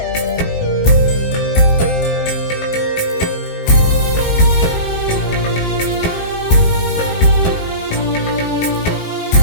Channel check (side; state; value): right; late; 28 ms